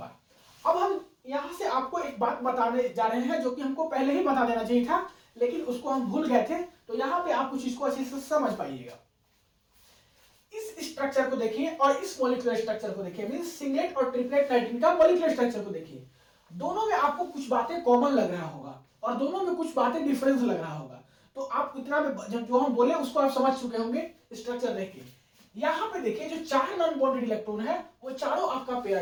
अब हम यहां से आपको एक बात बताने जा रहे हैं जो कि हमको पहले ही बता देना चाहिए था, लेकिन उसको हम भूल गए थे। तो यहां पे आप कुछ इसको अच्छे से समझ पाइएगा। इस स्ट्रक्चर को देखिए और इस मॉलिक्यूलर स्ट्रक्चर को देखिए, मींस सिंगलेट और ट्रिपलेट नाइट्रीन का मॉलिक्यूलर स्ट्रक्चर को देखिए। दोनों में आपको कुछ बातें कॉमन लग रहा होगा और दोनों में कुछ बातें डिफरेंस लग रहा होगा। तो आप इतना में जो हम बोले उसको आप समझ चुके होंगे स्ट्रक्चर देख के। यहां पे देखिए जो 4 नॉन बॉन्डेड इलेक्ट्रॉन है वो चारों आपका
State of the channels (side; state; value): both; identical; correlation 1.00